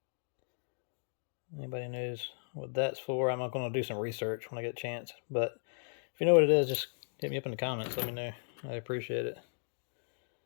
Anybody knows what that's for? I'm not going to do some research when I get a chance. But if you know what it is, just hit me up in the comments. Let me know. I appreciate it.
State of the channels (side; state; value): right; silent; digital silence